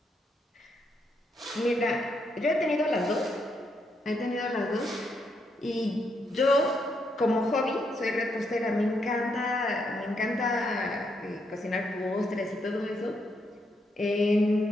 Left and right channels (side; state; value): both; normal; correlation 0.78